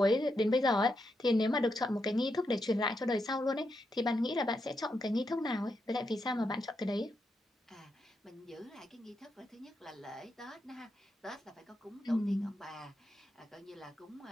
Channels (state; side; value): normal; both; correlation 0.84